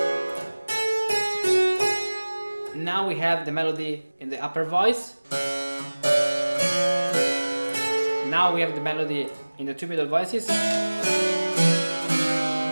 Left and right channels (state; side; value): inverted; both; correlation -1.00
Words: Now we have the melody in the upper voice. Now we have the melody in the two middle voices.